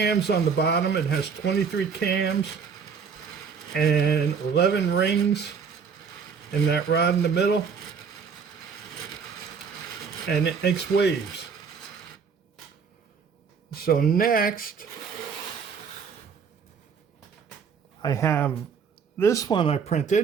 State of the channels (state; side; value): quieter; left; 6.1 dB